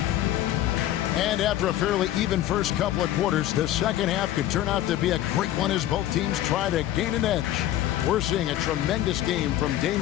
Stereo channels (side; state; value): right; quieter; 13.3 dB